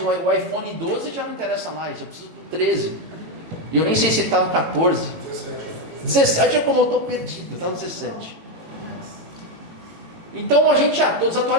iPhone 12, já não interessa mais. Eu preciso do 13. E eu nem sei se está no 14. 17 é como eu estou perdido, está no 17. Então a gente já estou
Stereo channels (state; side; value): late; left; 18 ms